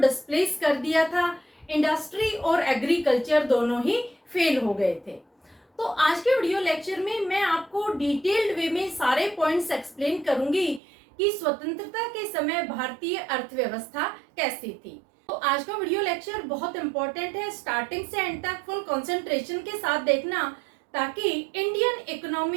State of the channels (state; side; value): drops out; left; at 10.8 s